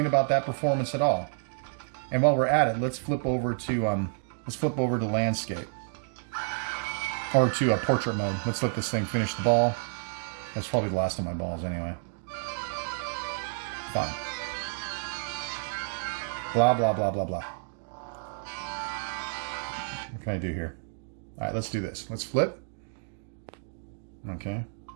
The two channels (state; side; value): silent; left; digital silence